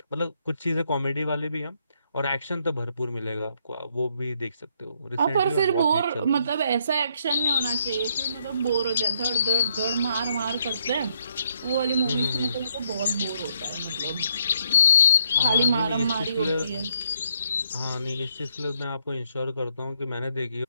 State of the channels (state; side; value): inverted; both; correlation -0.72